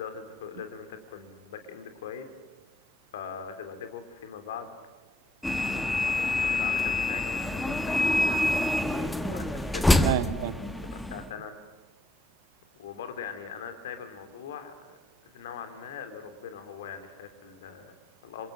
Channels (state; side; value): normal; both; correlation 0.75